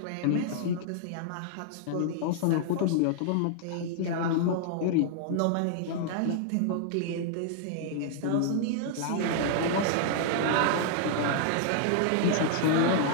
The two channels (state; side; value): different; both; correlation -0.01